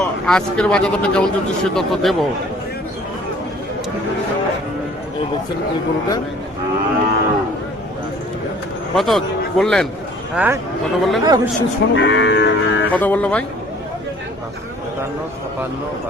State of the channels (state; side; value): normal; both; correlation 0.53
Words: আজকের বাজার দরটা কেমন চলছে সে তথ্য দেবো। এই দেখছেন এই গরুটা কত বললেন? হ্যাঁ কত বললেন? কত বললো ভাই?